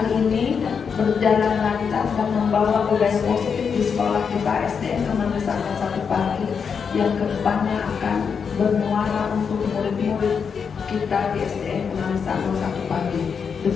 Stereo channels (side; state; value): right; quieter; 6.3 dB